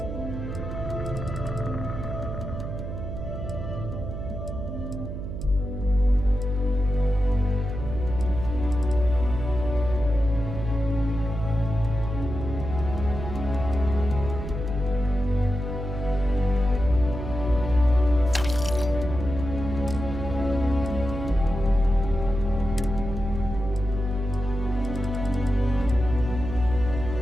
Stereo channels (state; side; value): noise; right; hum, 6 dB below the sound